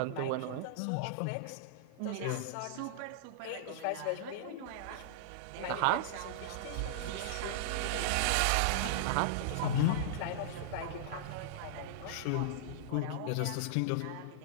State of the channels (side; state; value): both; different; correlation -0.02